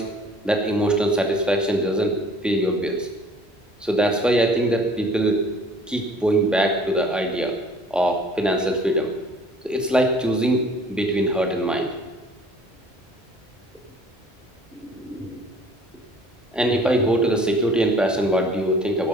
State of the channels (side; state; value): both; normal; correlation 0.52